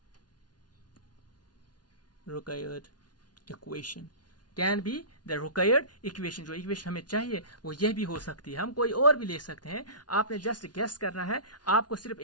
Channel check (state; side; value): late; right; 0.69 ms